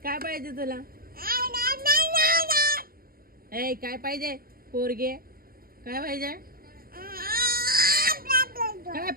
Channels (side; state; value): left; late; 0.43 ms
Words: काय पाहिजे तुला? ए काय पाहिजे पोरगे? काय पाहिजे? काय